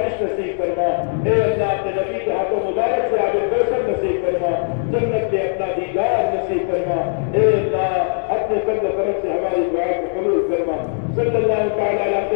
نصیب کرنا۔ اے اللہ اپنے نبی کے ہاتھوں مبارک سے آب کوثر نصیب کرنا، جنت کے اپنا دیدار نصیب کرنا۔ اے اللہ اپنے فضل و کرم سے ہماری دعا کو قبول فرما۔ صلی اللہ تعالی علی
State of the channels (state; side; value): silent; right; digital silence